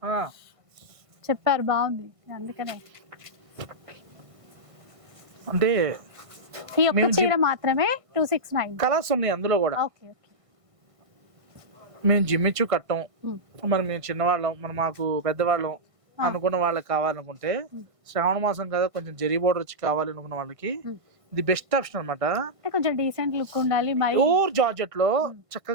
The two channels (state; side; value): late; left; 1.5 ms